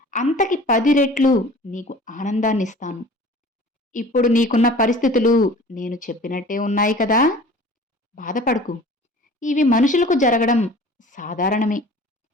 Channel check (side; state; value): both; normal; correlation 0.45